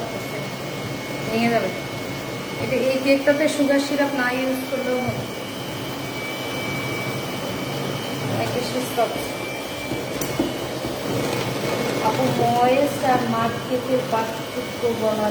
ভেঙে যাবে। এটা এই কেকটাতে সুগার সিরাপ না ইউজ করলেও হবে, অনেক বেশি সফট। আপু ময়েস্ট আর মাঠ কেকের পার্থক্য বলা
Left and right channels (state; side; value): identical; both; correlation 1.00